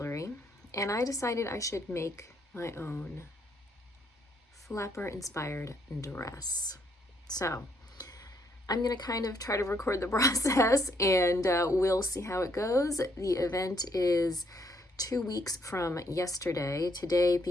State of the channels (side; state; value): both; normal; correlation 0.71